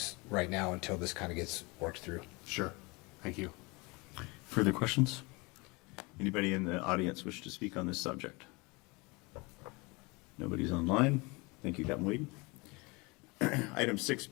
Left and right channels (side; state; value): right; quieter; 26.5 dB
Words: right now until this kind of gets worked through. Sure. Thank you. Further questions? Anybody in the audience wish to speak on this subject? Nobody's online. Thank you, Captain Weed. Item